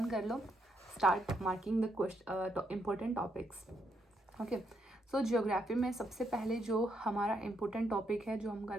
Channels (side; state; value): both; normal; correlation 0.77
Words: कर लो. Start marking the important topics. Okay. So geography में सबसे पहले जो हमारा इम्पोर्टेंट टॉपिक है जो हम